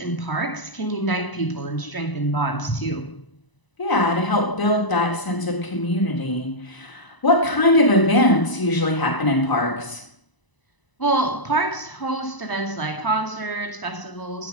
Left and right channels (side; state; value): right; late; 1.0 ms